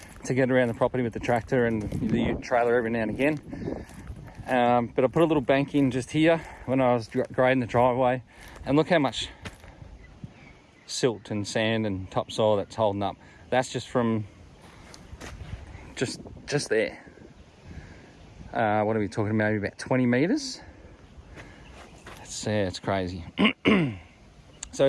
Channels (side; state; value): both; identical; correlation 1.00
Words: to get around the property with the tractor and the trailer every now and again. But I put a little bank in just here when I was grading the driveway, and look how much silt and sand and topsoil that's holding up. That's just from just there. What are we talking about? Maybe about 20 meters. It's crazy. So